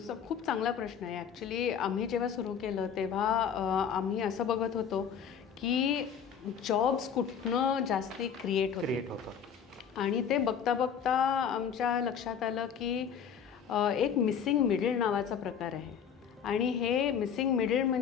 खूप चांगला प्रश्न आहे. ॲक्च्युली आम्ही जेव्हा सुरू केलं तेव्हा आम्ही असं बघत होतो की जॉब्स कुठनं जास्ती क्रिएट होतं, आणि ते बघता बघता आमच्या लक्षात आलं की एक मिसिंग मिडल नावाचा प्रकार आहे. आणि हे मिसिंग मिडल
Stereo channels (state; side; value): quieter; right; 7.6 dB